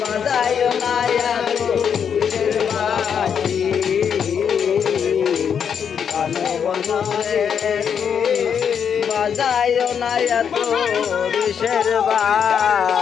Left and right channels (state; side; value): quieter; right; 7.5 dB